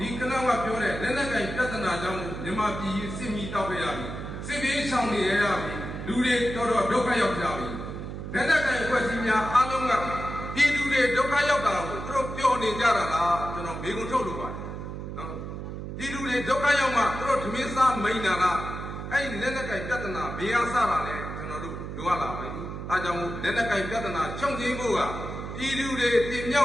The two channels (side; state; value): right; noise; hum, 7 dB below the sound